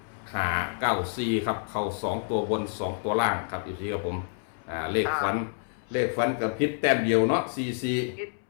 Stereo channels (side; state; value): right; silent; 59 dB below the other